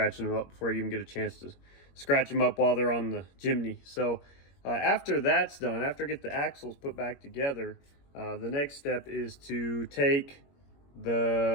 them up before you even get a chance to scratch them up while they're on the Jimny. So after that's done, after I get the axles put back together, the next step is to take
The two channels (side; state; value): right; late; 21 ms